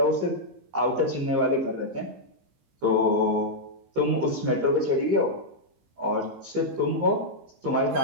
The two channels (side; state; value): left; late; 15 ms